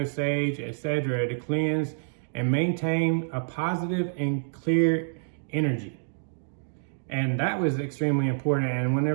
sage, etc. to cleanse and maintain a positive and clear energy. And that was extremely important. And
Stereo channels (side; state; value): left; silent; digital silence